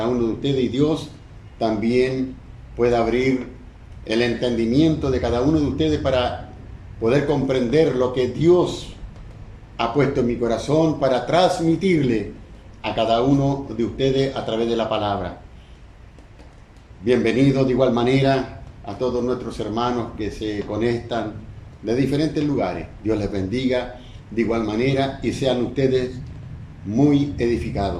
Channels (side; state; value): both; identical; correlation 1.00